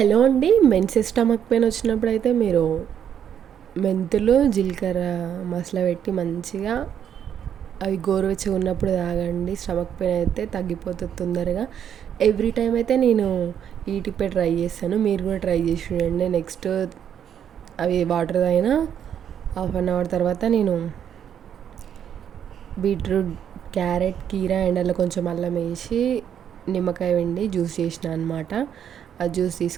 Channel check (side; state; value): left; quieter; 9.0 dB